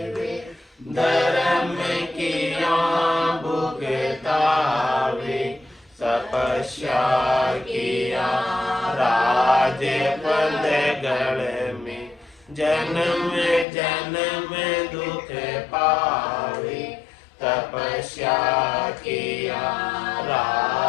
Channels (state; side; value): drops out; right; at 13.7 s